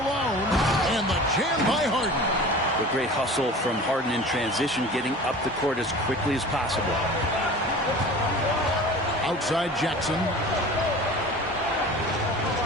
And the jam by Harden. The great hustle from Harden in transition, getting up the court as quickly as possible. Outside Jackson.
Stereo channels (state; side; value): normal; both; correlation 0.39